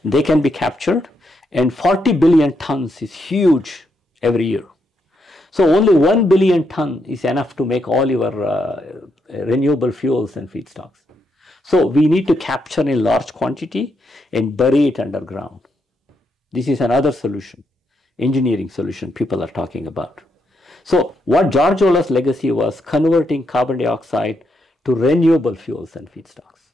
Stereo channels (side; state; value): both; normal; correlation 0.79